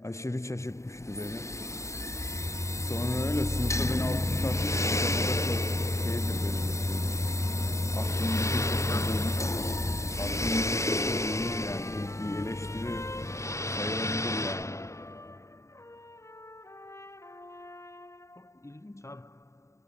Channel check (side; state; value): right; late; 0.14 ms